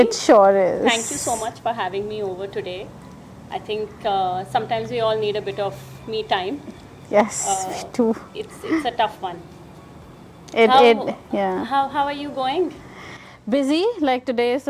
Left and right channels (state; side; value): identical; both; correlation 1.00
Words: sure is. Thank you so much for having me over today. I think sometimes we all need a bit of me time. Yes, me too. It's a tough one. Yeah. How are you going? Busy. Like today is